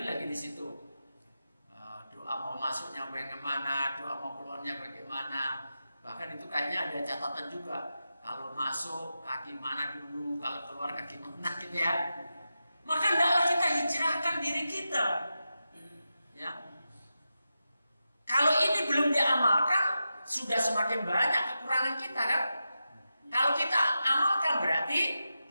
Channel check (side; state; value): both; inverted; correlation -0.90